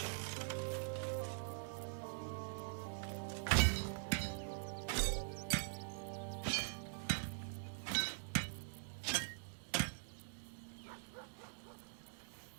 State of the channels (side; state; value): left; silent; digital silence